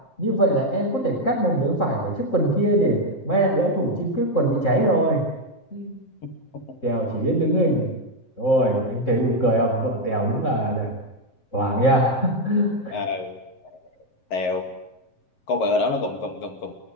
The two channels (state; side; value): late; right; 7.6 ms